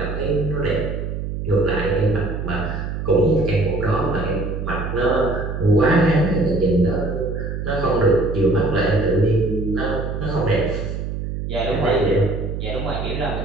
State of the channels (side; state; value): right; noise; hum, 5 dB below the sound